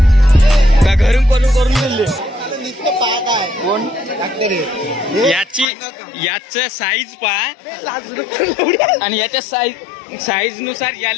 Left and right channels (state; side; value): drops out; right; at 5.7 s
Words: घरून करून दिले कोण? याच साईज पहा आणि याच्या साईज नुसार